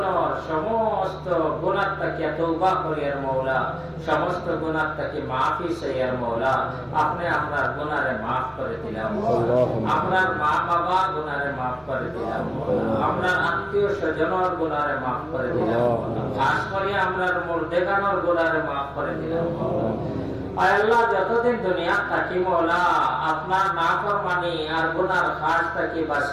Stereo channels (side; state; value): both; identical; correlation 1.00